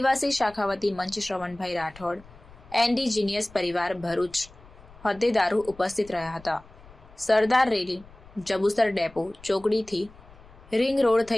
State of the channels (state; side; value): noise; left; rumble, 22 dB below the sound